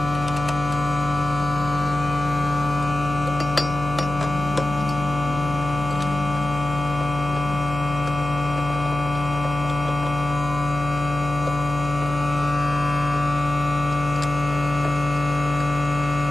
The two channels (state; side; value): noise; left; hum, 8 dB below the sound